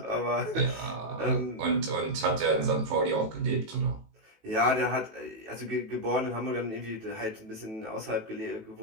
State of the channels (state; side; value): late; left; 18 ms